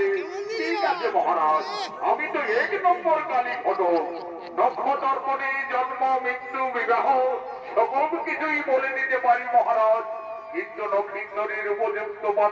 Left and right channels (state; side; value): identical; both; correlation 1.00